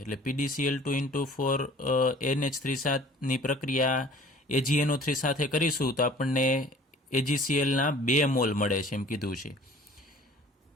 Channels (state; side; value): normal; both; correlation 0.49